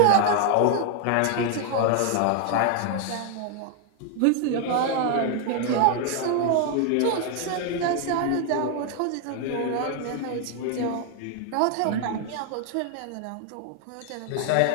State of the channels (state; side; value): different; both; correlation 0.00